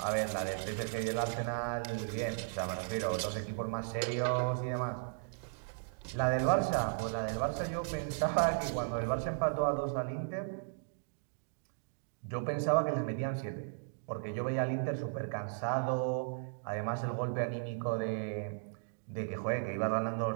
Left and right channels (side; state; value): left; silent; digital silence